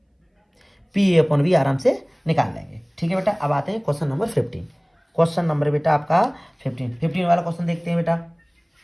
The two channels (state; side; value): identical; both; correlation 1.00